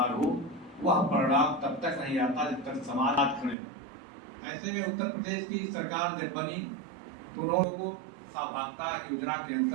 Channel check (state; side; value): drops out; left; at 3.6 s